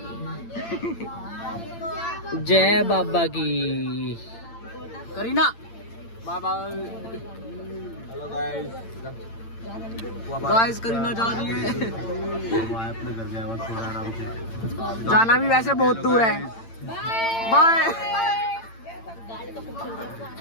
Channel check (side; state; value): right; late; 8.8 ms